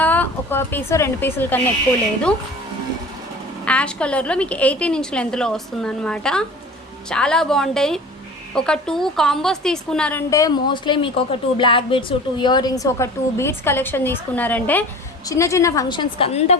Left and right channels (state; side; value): normal; both; correlation 0.40